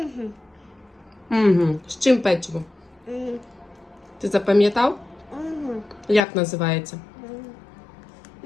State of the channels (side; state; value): right; drops out; at 6.2 s